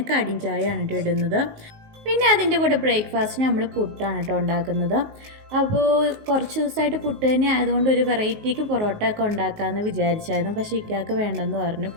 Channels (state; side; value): late; left; 19 ms